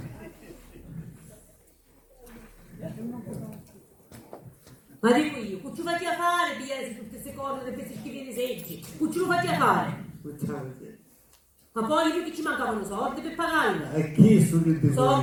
Ma dico io, che ci fai a fare, pigliare tutte queste cose, di questi schifi di seggi? Che ci lo fai a fare? Ma poi io che ci mancavano soldi per pagarla. E chi su che dico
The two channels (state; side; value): identical; both; correlation 1.00